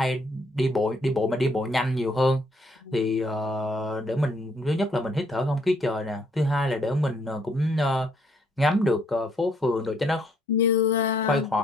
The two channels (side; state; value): both; normal; correlation 0.68